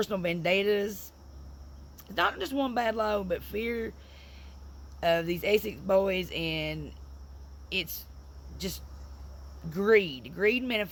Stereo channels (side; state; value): both; identical; correlation 1.00